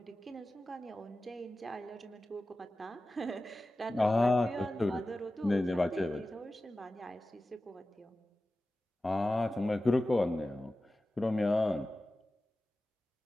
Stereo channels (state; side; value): normal; both; correlation 0.95